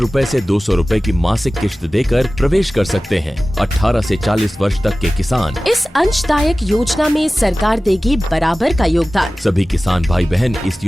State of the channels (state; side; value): normal; both; correlation 0.97